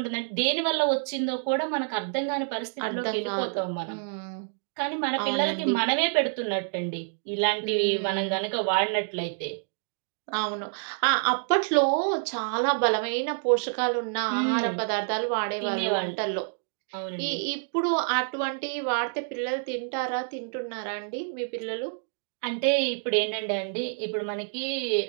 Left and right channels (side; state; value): left; silent; digital silence